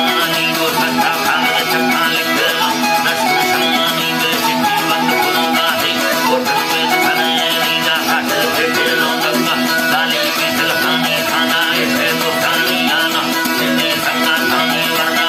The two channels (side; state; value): both; identical; correlation 1.00